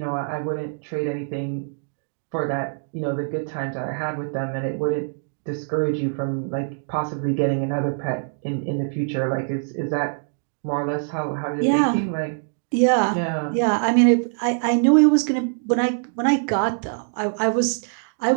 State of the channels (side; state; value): left; silent; digital silence